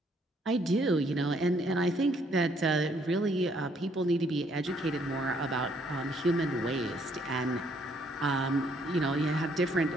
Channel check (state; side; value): normal; both; correlation 0.67